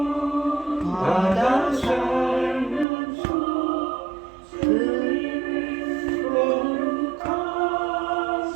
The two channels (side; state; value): left; drops out; at 2.9 s